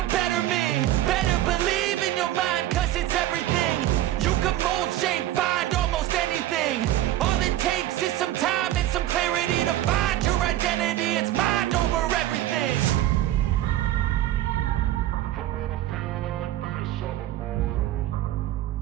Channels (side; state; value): left; quieter; 13.9 dB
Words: better me. Better believe in your mind, cause it's everything. You can mold, shape, find almost anything. All it takes is some time and some clarity to find your identity. It's mind over everything.